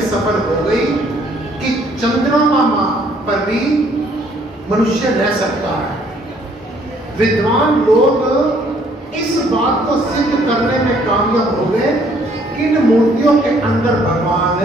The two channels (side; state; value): both; normal; correlation 0.63